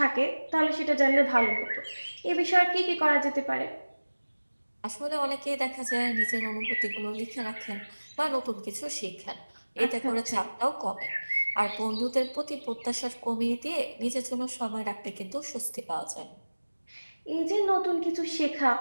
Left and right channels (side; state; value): both; inverted; correlation -1.00